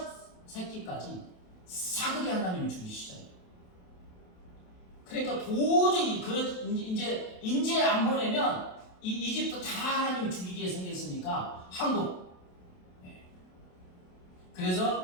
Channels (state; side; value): late; right; 27 ms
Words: 새끼까지 사그리 하나님이 죽이시잖아요. 그러니까 도저히 이제 안 보내면 이 이집트 다 하나님이 죽이게 생겼으니까 한국.